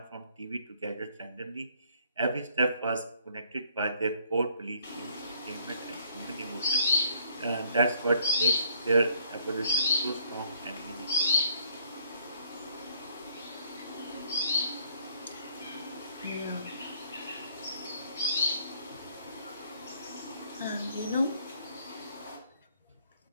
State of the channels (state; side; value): inverted; both; correlation -0.63